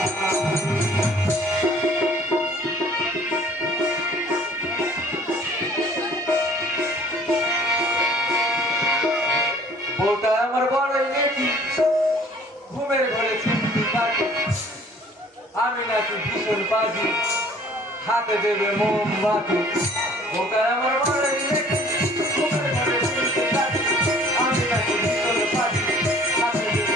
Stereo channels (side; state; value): both; normal; correlation 0.53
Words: বউটা আমার বড়ই নেকি, ঘুমের ঘরে চিমটি কাটি, আমি নাকি ভীষণ বাজি, হাতে দেবে মোমবাতি। বউটা আমার বড়ই নেকি, ঘুমের ঘরে চিমটি কাটি, আমি নাকি ভীষণ বাজি, হাতে দেবে